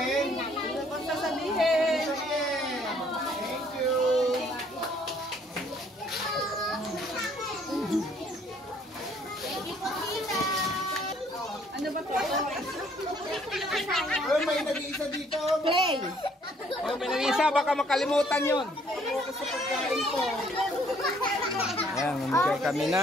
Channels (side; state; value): both; normal; correlation 0.63